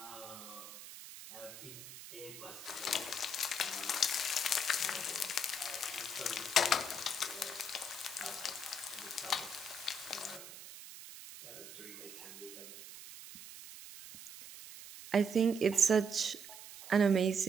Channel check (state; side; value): noise; right; hiss, 13 dB below the sound